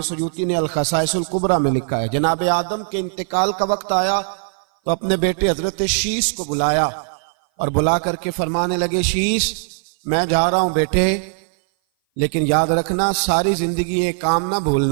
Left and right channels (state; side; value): silent; left; 57 dB below the other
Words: سیوطی نے الخصائص الکبریٰ میں لکھا ہے، جناب آدم کے انتقال کا وقت آیا تو اپنے بیٹے حضرت شیس کو بلایا اور بلا کر کے فرمانے لگے، شیس میں جا رہا ہوں بیٹے، لیکن یاد رکھنا ساری زندگی یہ کام نہ